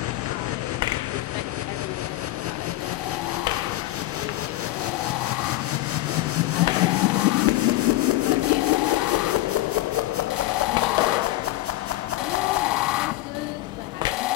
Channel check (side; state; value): right; quieter; 16.4 dB